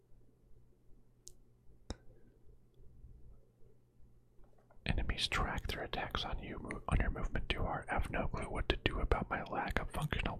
Enemies track their attacks on you on your movement too hard. I have no clue what to do about my lack of functional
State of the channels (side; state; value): both; identical; correlation 1.00